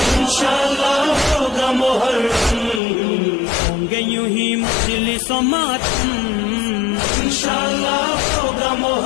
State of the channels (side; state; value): right; drops out; at 2.8 s